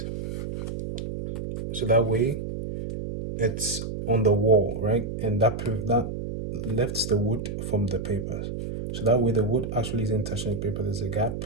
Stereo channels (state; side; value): noise; right; hum, 5 dB below the sound